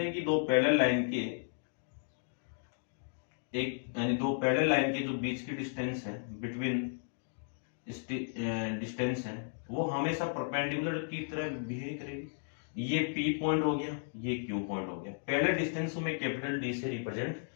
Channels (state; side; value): silent; right; digital silence